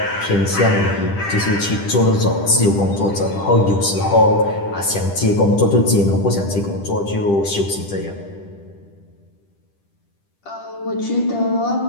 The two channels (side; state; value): right; late; 10 ms